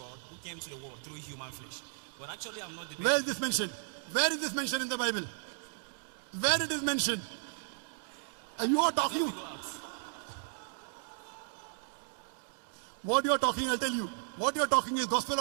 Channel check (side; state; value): left; silent; digital silence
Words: who came to the world through human flesh. But actually, I'm not debating. Where is this mentioned? Where is this mentioned in the Bible? Where it is mentioned? And you are Let me talking. go out. What you are talking, I'll tell you. What you are talking is Gospel